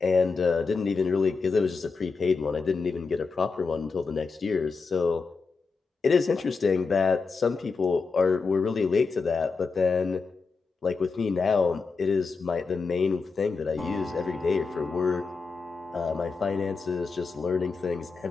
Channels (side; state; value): right; quieter; 4.6 dB